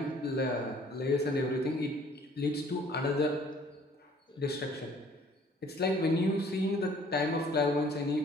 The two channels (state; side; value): normal; both; correlation 0.56